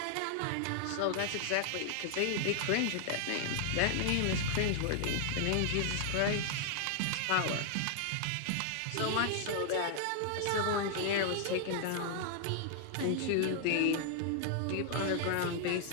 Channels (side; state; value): both; different; correlation 0.00